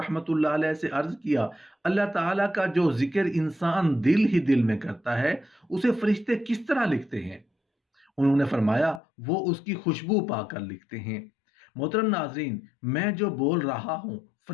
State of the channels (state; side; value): drops out; right; at 9.0 s